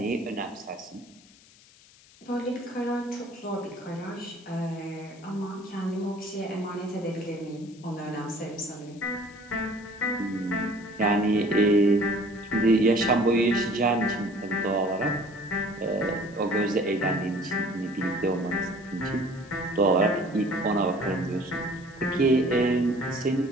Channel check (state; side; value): noise; left; hiss, 26 dB below the sound